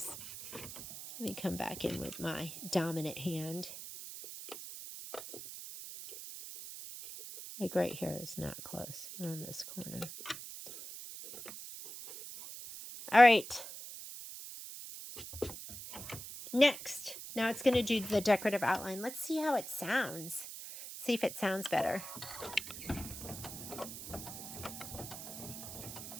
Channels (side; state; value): right; noise; hiss, 10 dB below the sound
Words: Let me come back in with my dominant hand. Like right here is not close, around this corner. All right. Next, now it's going to do the decorative outline. Let's see how it sounds. See if it sounds better.